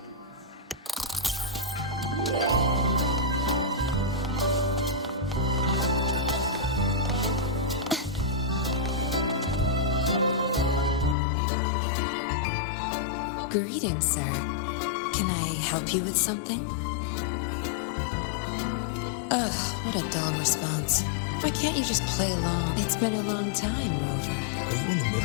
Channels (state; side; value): drops out; right; at 11.2 s